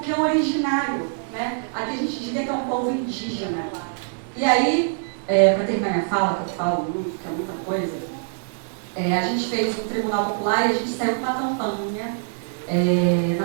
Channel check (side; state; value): left; silent; digital silence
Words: que é originário. Né? Aqui a gente diria que é um povo indígena. E aí, para terminar minha fala, que eu falo muito, que é muita coisa, a gente fez um tribunal popular e a gente saiu com uma campanha